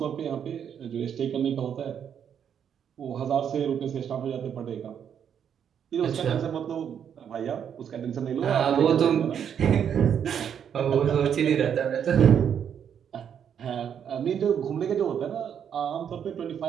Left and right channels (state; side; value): quieter; left; 8.4 dB